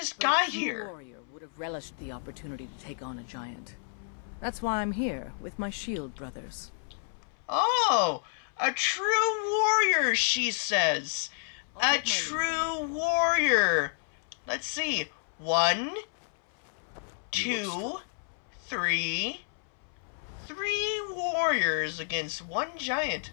But got a true here. warrior would have relished the opportunity to take on a giant. That's why I'm here, with my shield brothers. Oh, a true warrior, she says. I'll A take my leave true warrior. Let's see. 1, 2, Come to 3. your master and be a companion. 3 warriors against 1 giant.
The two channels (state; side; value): silent; right; 58 dB below the other